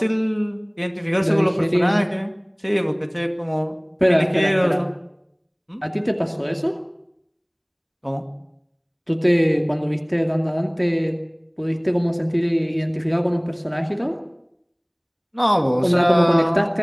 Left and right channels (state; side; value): identical; both; correlation 1.00